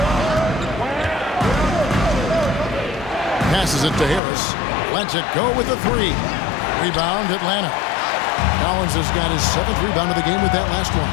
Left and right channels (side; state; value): right; drops out; at 4.2 s